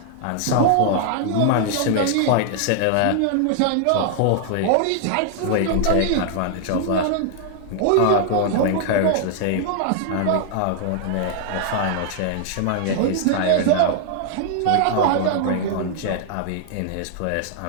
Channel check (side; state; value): both; different; correlation 0.00